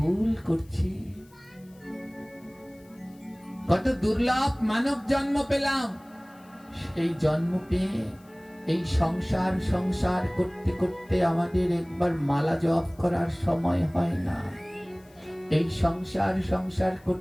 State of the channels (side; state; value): left; noise; hiss, 30 dB below the sound